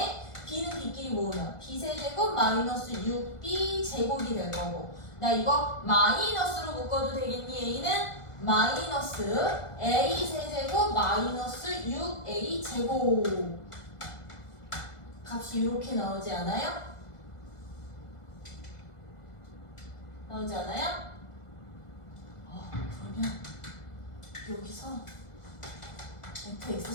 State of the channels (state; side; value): late; right; 1.5 ms